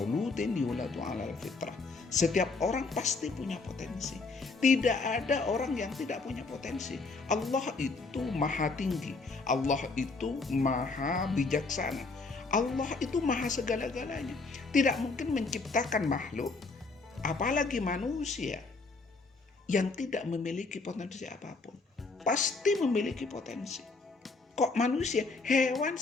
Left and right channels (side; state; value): right; quieter; 3.9 dB